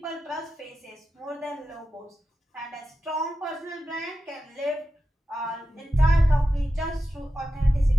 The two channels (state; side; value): normal; both; correlation 0.92